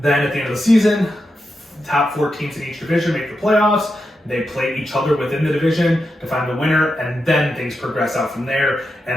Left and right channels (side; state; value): both; normal; correlation 0.87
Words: then at the end of the season, top 4 teams in each division make the playoffs. They play each other within the division to find the winner, and then things progress out from there.